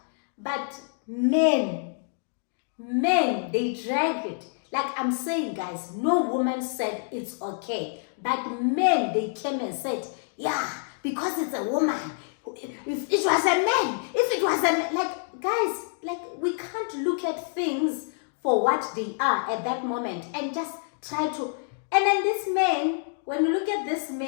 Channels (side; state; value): right; silent; 60 dB below the other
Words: But men, they drag it. Like I'm saying, guys, no woman said it's okay. But men, they came and said, yeah, because it's a woman. If it was a man, like, guys, like, we can't look at things for what they are at that moment and just try to. And then this man, when you look at this